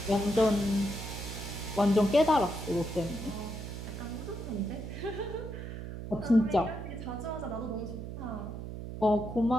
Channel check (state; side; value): noise; right; hum, 8 dB below the sound